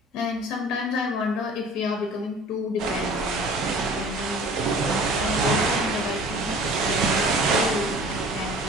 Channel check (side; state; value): both; normal; correlation 0.46